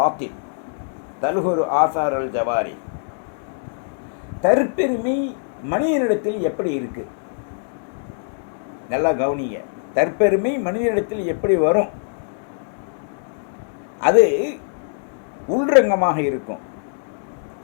தல்ஹுரு ஆசார் அல் ஜவாரி. தற்பெருமை மனிதனிடத்தில் எப்படி இருக்கு? நல்லா கவனிங்க. தற்பெருமை மனிதனிடத்தில் எப்படி வரும்? அது உள்ரங்கமாக இருக்கும்.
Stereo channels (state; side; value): silent; right; digital silence